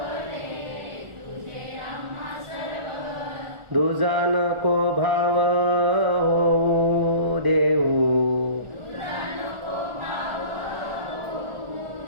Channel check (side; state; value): left; late; 1.4 ms